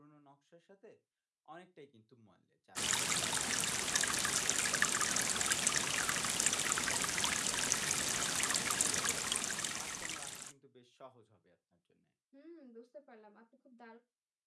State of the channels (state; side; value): identical; both; correlation 1.00